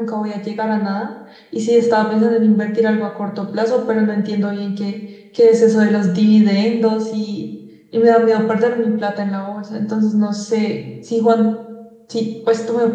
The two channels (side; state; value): both; identical; correlation 1.00